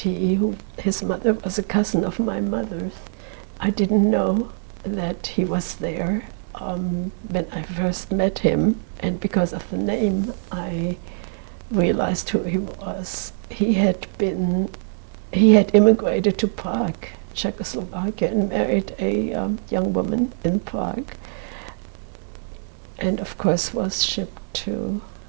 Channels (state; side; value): silent; left; 63 dB below the other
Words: his mother was a cousin of my mother's. I didn't know that he was there when I first met him, and because of the name, I realized who he was. He had immigrated to Prague, Czechoslovakia, and married a young woman in Prague, and of course was shipped to